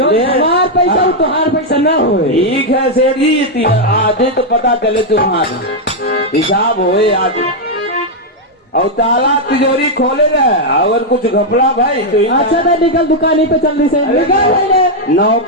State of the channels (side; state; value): both; normal; correlation -0.01